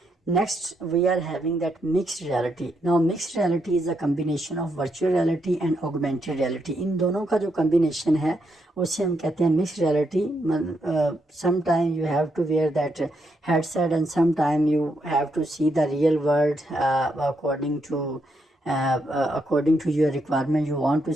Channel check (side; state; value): both; normal; correlation 0.79